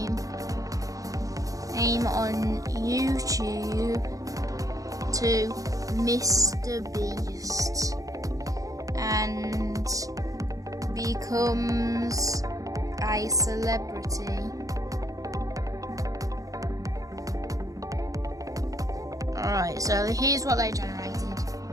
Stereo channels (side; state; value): left; late; 0.17 ms